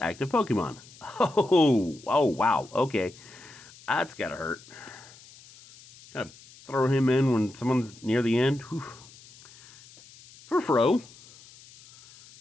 active Pokemon. Oh, wow, okay. That's gotta hurt. Gotta throw him in when someone's near the end. Whew. Furfrou.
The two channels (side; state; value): left; noise; hiss, 22 dB below the sound